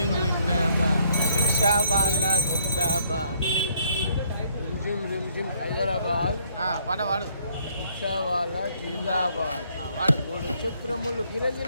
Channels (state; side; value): inverted; both; correlation -0.66